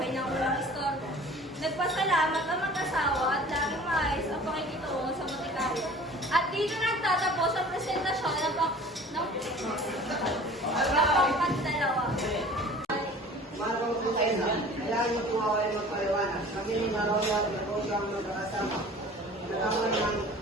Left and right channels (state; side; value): normal; both; correlation 0.45